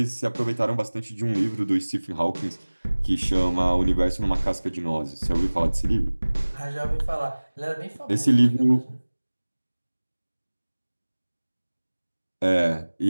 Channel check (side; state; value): both; inverted; correlation -1.00